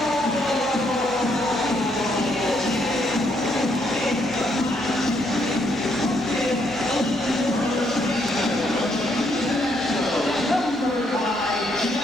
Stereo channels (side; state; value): both; normal; correlation 0.73